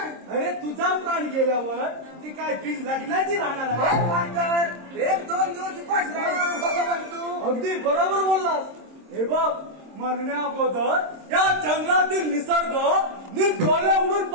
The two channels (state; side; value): late; left; 26 ms